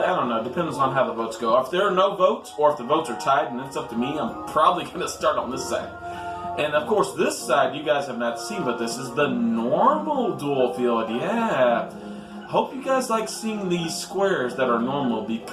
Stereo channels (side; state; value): both; identical; correlation 1.00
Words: I don't know, depends on how the votes go. If there are no votes, or if the votes are tied and it's up to me, I'm probably going to start on this side. And of course, this side you guys have not seen, but this is the normal duel field, yeah. Hope you guys like seeing these squares that are normal,